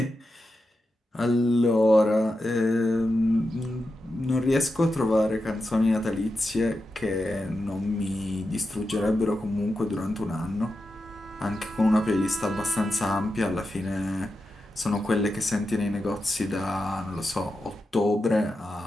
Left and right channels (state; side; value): normal; both; correlation 0.89